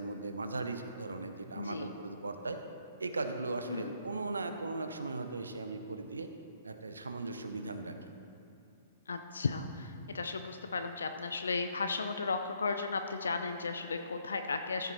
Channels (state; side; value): inverted; both; correlation -0.72